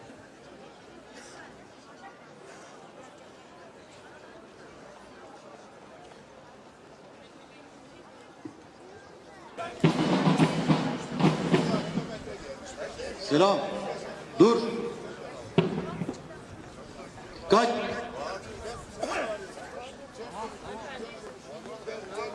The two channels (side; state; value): both; identical; correlation 1.00